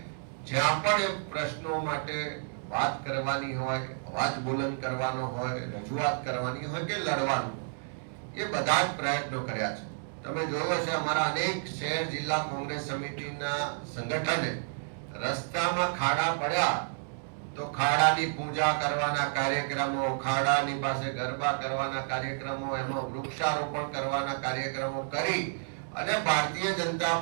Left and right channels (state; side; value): silent; left; digital silence